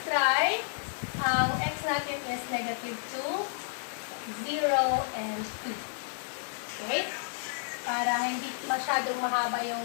try. Ang x natin is negative 2, 0, and 2. Okay? Para hindi masyadong mahaba yung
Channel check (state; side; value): silent; right; digital silence